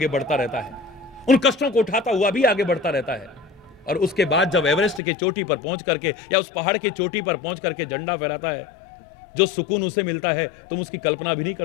बढ़ता रहता है, उन कष्टों को उठाता हुआ भी आगे बढ़ता रहता है। और उसके बाद जब एवरेस्ट की चोटी पर पहुंच करके या उस पहाड़ की चोटी पर पहुंच करके झंडा फहराता है, जो सुकून उसे मिलता है तुम उसकी कल्पना भी नहीं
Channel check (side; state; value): right; drops out; at 5.0 s